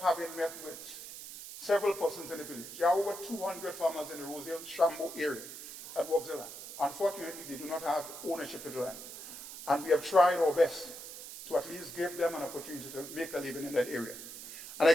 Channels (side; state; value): right; noise; hiss, 12 dB below the sound